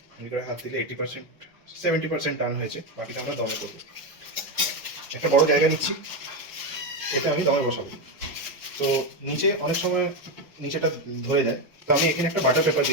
আমি করে হাত দিলে 80%-70% টান হয়েছে, বাকিটা আমরা দমে করবো। একটা বড় জায়গা নিচ্ছি, এটা আমি দমে বসাবো। তো নিচে অনেক সময় নিচেটা ধরে যায়, তো আমি এখানে একটা বাটার পেপার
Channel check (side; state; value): both; normal; correlation 0.11